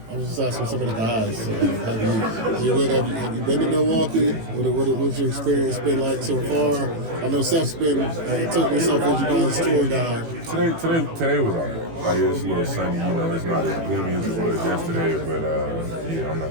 was just asking some of the guys. Have you been to Milwaukee? What's your experience been like so far? I know Seth's been took himself as you guys' tour guide. Today was all right. Like, it's a little sunny, it's not as gloomy as it was yesterday, but I'm not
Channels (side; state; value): left; late; 18 ms